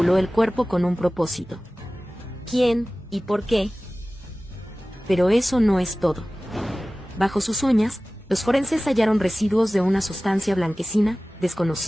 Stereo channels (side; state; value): both; normal; correlation 0.97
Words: el cuerpo con un propósito. ¿Quién y por qué? Pero eso no es todo. Bajo sus uñas, los forenses hallaron residuos de una sustancia blanquecina,